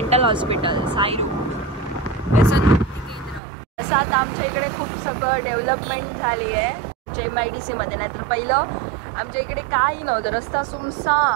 हॉस्पिटल साईरू व्यसन मुक्ती केंद्र. असं आता आमच्या इकडे खूप सगळं डेव्हलपमेंट झाली आहे आमच्या MIDC मध्ये. नाही तर पहिलं आमच्या इकडे काही नव्हतं, रस्ता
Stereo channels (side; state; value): left; drops out; at 3.4 s